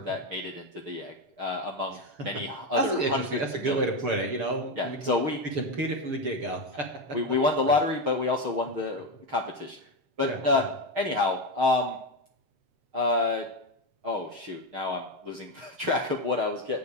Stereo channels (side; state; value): left; late; 6.8 ms